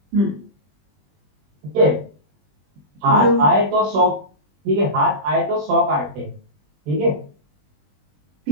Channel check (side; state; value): left; late; 20 ms